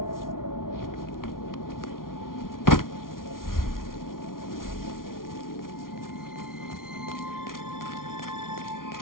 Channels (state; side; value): late; right; 0.91 ms